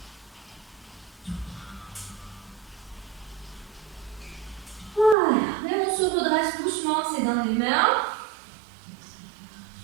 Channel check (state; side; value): drops out; left; at 5.2 s